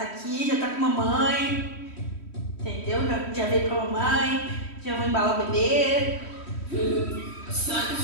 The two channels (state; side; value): late; right; 3.1 ms